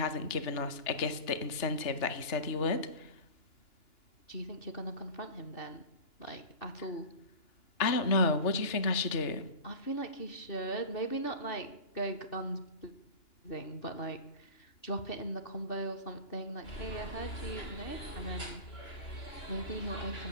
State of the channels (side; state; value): right; late; 2.9 ms